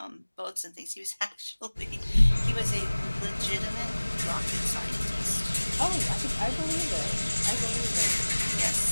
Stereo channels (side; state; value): both; inverted; correlation -1.00